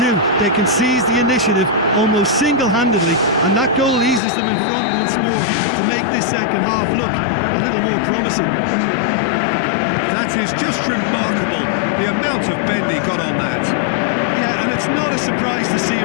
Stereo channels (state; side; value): drops out; right; at 4.2 s